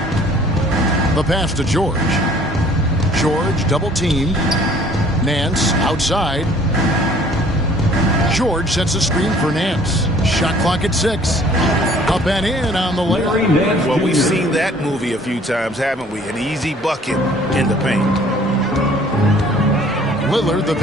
The pass to George. George double-teamed. Nance outside. George sets a screen for Nance. Shot clock at 6. Up and in on the layup. Well, we've seen that movie a few times, haven't we? An easy bucket in the paint. Lillard the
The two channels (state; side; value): normal; both; correlation 0.55